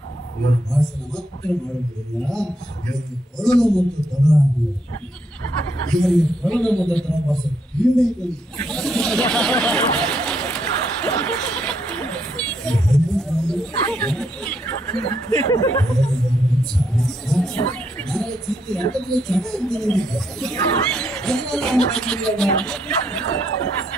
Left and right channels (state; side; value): normal; both; correlation 0.76